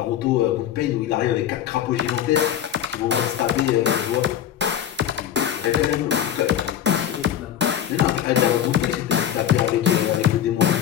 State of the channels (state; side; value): quieter; right; 10.0 dB